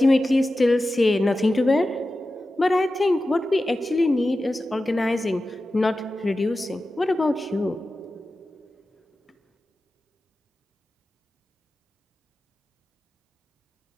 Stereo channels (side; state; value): both; normal; correlation 0.93